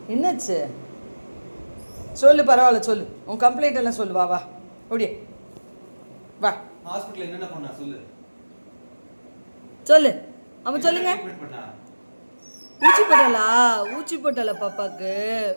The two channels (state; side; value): inverted; both; correlation -1.00